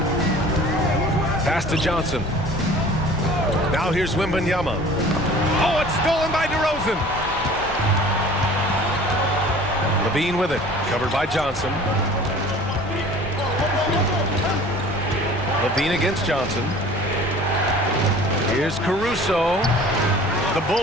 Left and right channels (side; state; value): left; noise; rumble, 16 dB below the sound